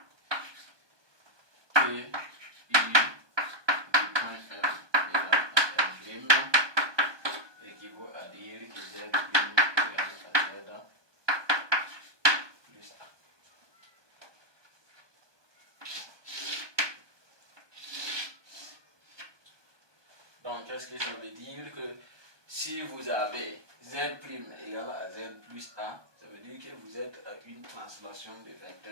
P I du point M égale à M' équivaut à dire que Z' égale à Z plus A. Donc, qu'est-ce que ça veut dire? Que si vous avez Z' égale à Z plus A, ça veut dire que vous êtes à une translation de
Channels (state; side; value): late; left; 1.2 ms